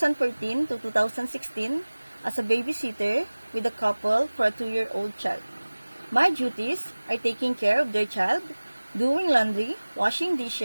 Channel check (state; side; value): inverted; both; correlation -1.00